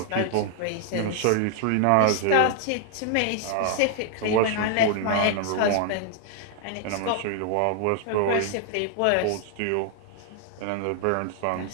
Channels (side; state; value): both; different; correlation 0.00